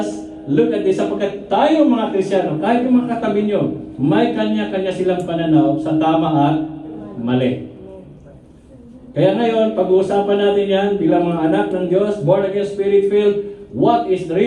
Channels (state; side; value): identical; both; correlation 1.00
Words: look at this. Sapagkat tayo mga Kristiyano, kahit yung mga katabi nyo, may kanya-kanya silang pananaw sa tama at mali. Kaya ngayon, pag-uusapan natin yan bilang mga anak ng Diyos, born again, spirit-filled, what is